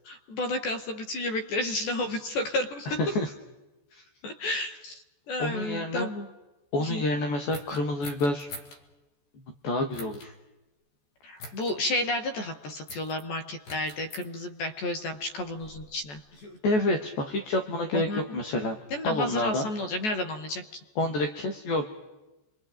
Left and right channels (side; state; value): right; late; 14 ms